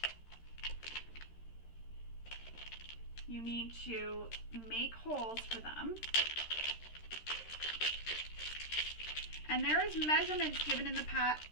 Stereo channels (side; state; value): right; late; 13 ms